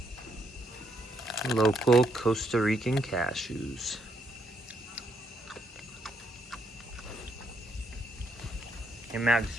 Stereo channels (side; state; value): both; normal; correlation 0.74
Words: local Costa Rican cashews. Hey Max,